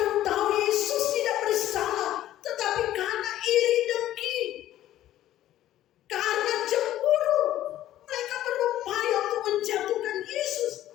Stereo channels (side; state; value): right; quieter; 13.3 dB